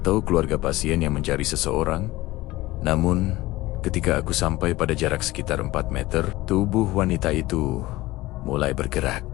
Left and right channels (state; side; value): quieter; right; 18.7 dB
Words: keluarga pasien yang mencari seseorang. Namun, ketika aku sampai pada jarak sekitar 4 meter, tubuh wanita itu mulai bergerak.